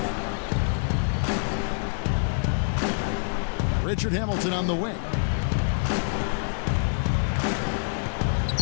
Richard Hamilton on the wing.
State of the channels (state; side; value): silent; right; digital silence